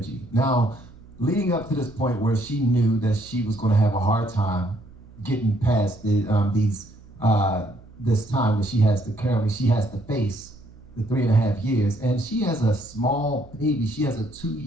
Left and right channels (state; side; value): noise; right; hum, 22 dB below the sound